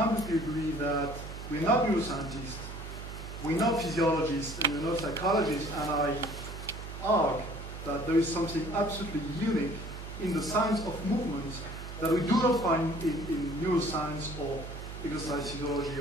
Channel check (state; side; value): noise; right; hum, 10 dB below the sound